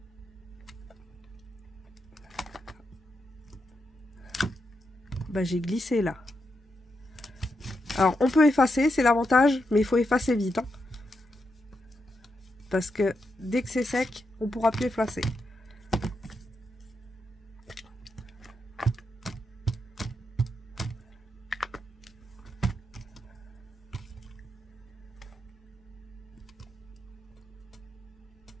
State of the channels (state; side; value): normal; both; correlation 0.84